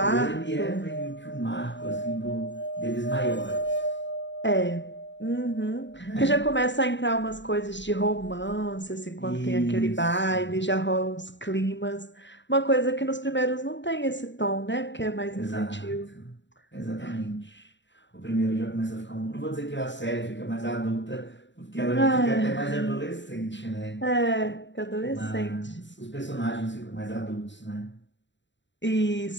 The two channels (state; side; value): late; right; 0.53 ms